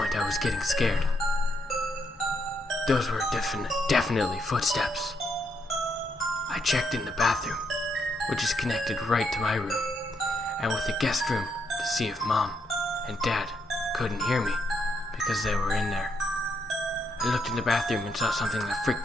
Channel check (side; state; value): both; normal; correlation 0.77